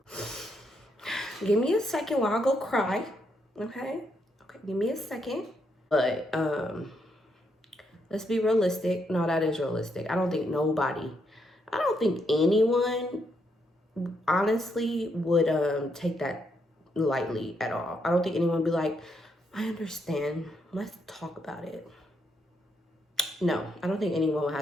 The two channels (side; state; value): both; normal; correlation 0.77